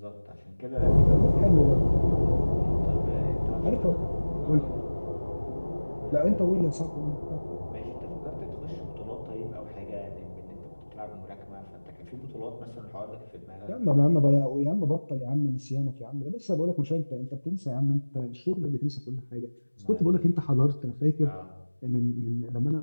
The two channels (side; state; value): both; inverted; correlation -1.00